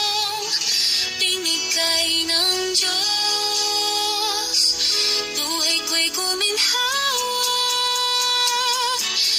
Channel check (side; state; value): both; identical; correlation 1.00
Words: binigay ng Diyos. Buhay ko'y guminhawa,